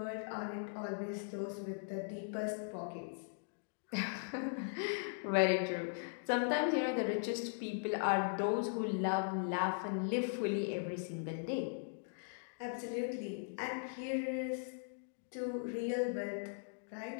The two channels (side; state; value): right; silent; digital silence